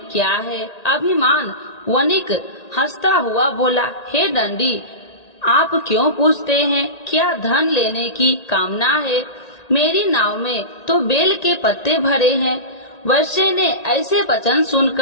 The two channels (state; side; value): late; right; 1.8 ms